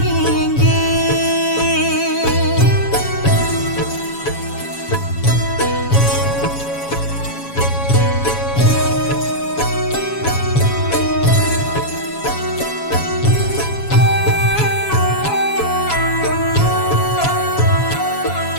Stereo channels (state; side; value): late; right; 7.1 ms